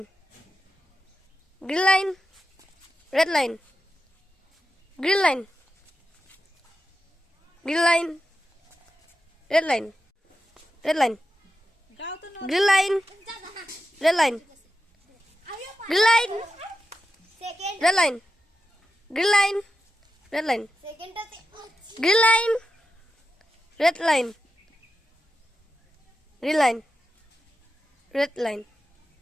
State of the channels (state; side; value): normal; both; correlation 0.89